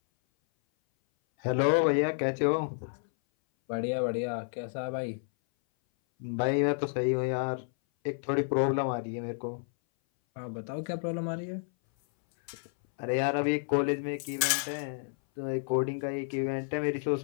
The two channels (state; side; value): silent; right; 57 dB below the other